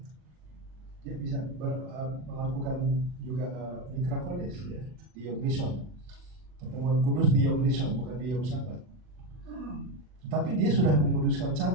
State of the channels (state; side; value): late; left; 39 ms